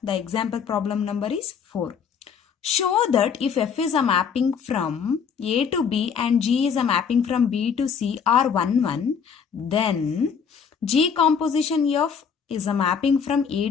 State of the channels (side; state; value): right; quieter; 6.7 dB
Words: the example problem number is 4. Show that if f is a mapping from A to B and G is a mapping from B to C are 1, 1, then G composition F is a mapping from A